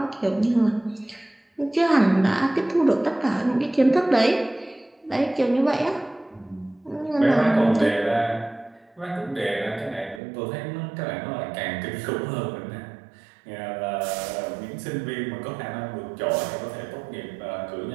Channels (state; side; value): drops out; left; at 10.2 s